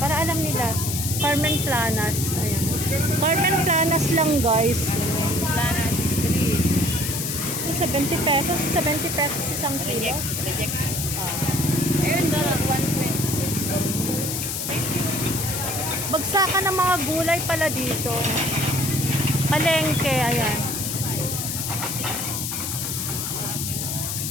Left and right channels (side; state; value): left; noise; hiss, 3 dB below the sound